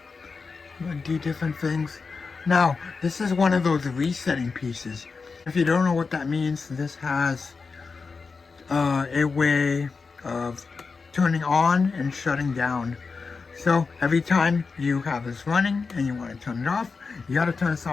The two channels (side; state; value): right; quieter; 4.7 dB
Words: do different things. Now, this is one of those resetting pieces. If you don't know what that means, this has a way of turning on and shutting down. So every time you have this running and you want to turn it off, you got to turn this